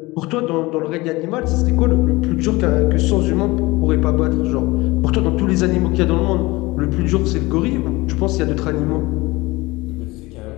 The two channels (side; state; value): right; quieter; 21.7 dB